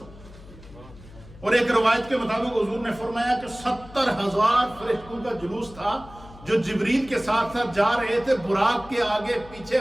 اور ایک روایت کے مطابق حضور نے فرمایا کہ 70,000 فرشتوں کا جلوس تھا جو جبریل کے ساتھ جا رہے تھے. براق کے آگے پیچھے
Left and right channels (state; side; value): noise; left; hum, 19 dB below the sound